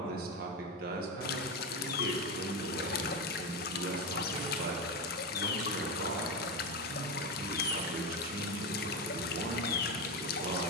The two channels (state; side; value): normal; both; correlation 0.15